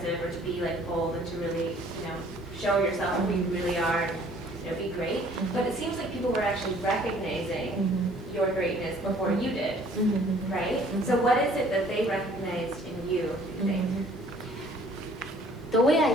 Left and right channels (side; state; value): both; normal; correlation 0.56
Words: or to be like bold and to really, show yourself who you really are and be great. But it seems like people were actually recognizing your greatness before you did, right? So what is it that they recognized in you, do you think? The way I